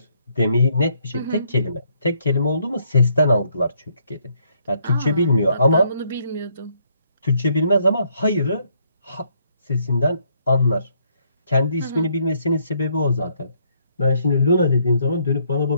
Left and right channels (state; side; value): inverted; both; correlation -0.71